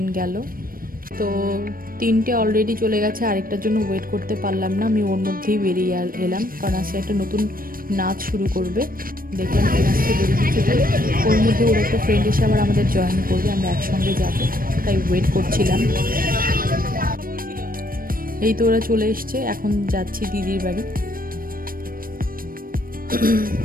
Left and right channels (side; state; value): left; late; 0.41 ms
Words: গেল। তো 3টে অলরেডি চলে গেছে, আরেকটার জন্য ওয়েট করতে পারলাম না। আমি ওর মধ্যেই বেরিয়ে এলাম, কারণ আজকে একটা নতুন নাচ শুরু করবে। দেখলাম এই নাচটা বেরিয়ে দিচ্ছে, তাই ওর মধ্যে ওর একটা ফ্রেন্ড এসে আবার আমাদের জয়েন করবে, আমরা একসঙ্গে যাব, তাই ওয়েট করছিলাম। এই তো ওরা চলে এসছে, এখন যাচ্ছি দিদির বাড়ি।